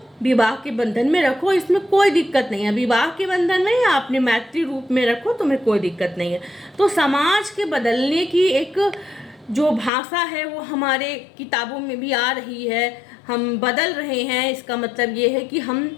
विवाह के बंधन में रखो, इसमें कोई दिक्कत नहीं है। विवाह के बंधन में या अपने मैत्री रूप में रखो, तुम्हें कोई दिक्कत नहीं है। तो समाज के बदलने की एक जो भाषा है वो हमारे किताबों में भी आ रही है, हम बदल रहे हैं। इसका मतलब ये है कि हम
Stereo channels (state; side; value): drops out; right; at 9.9 s